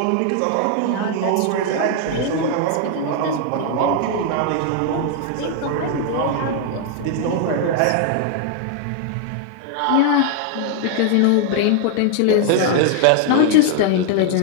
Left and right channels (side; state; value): both; different; correlation 0.00